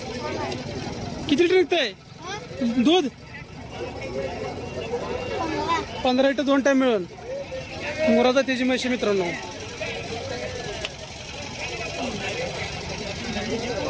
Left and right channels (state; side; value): identical; both; correlation 1.00